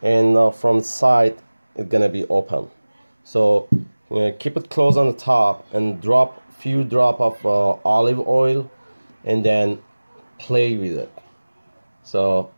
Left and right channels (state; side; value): inverted; both; correlation -1.00